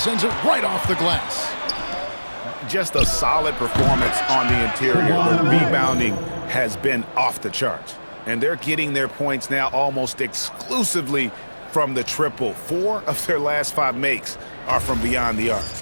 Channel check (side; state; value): both; inverted; correlation -1.00